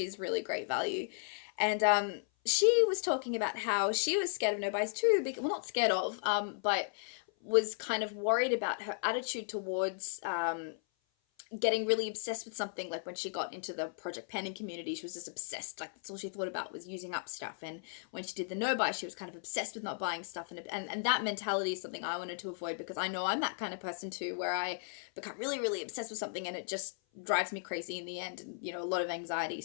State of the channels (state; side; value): silent; right; 54 dB below the other